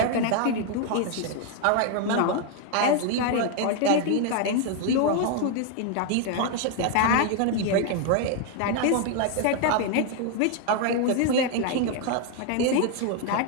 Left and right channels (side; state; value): both; different; correlation 0.01